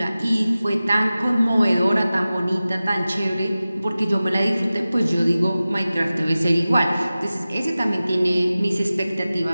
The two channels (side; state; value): both; inverted; correlation -0.96